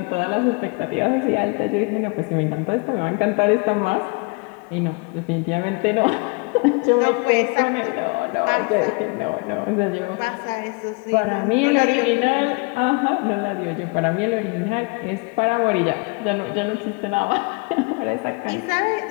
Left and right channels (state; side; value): quieter; right; 30.5 dB